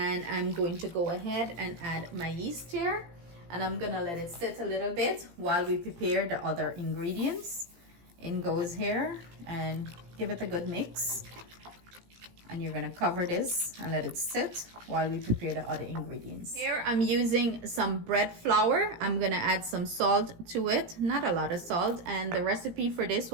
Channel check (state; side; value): late; left; 17 ms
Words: I'm going to go ahead and add my yeast here, and I'm gonna let it sit a little bit while we prepare the other ingredients. In goes here, and give it a good mix, and you're gonna cover this and let it sit while we prepare the other ingredients. Here I'm using some bread flour. I'm gonna add some salt to it, not a lot of salt, and the recipe for this